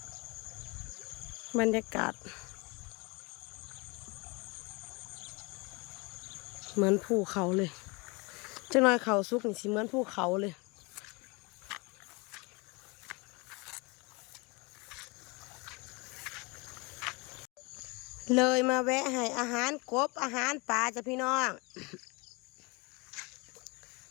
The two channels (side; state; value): right; quieter; 28.0 dB